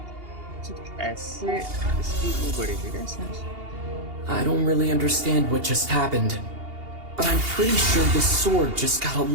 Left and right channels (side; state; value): left; late; 2.8 ms